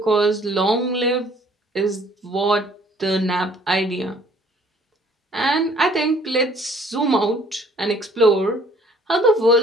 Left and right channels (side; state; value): both; normal; correlation 0.58